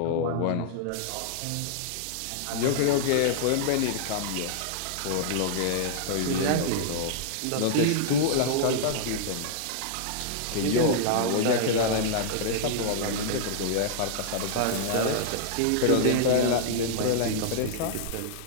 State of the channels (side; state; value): both; different; correlation -0.01